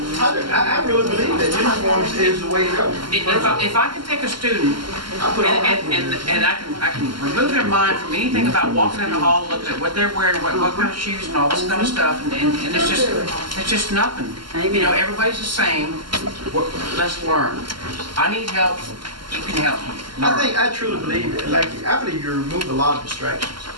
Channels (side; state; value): left; late; 0.72 ms